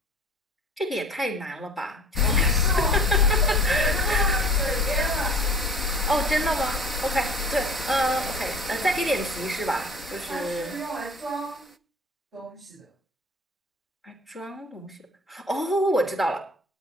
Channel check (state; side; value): normal; both; correlation 0.45